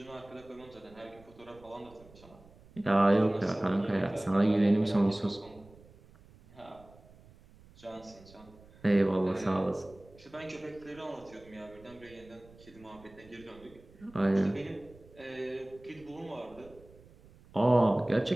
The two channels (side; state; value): right; noise; rumble, 24 dB below the sound